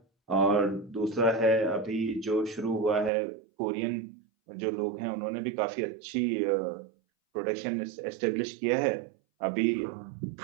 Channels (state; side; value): drops out; left; at 3.1 s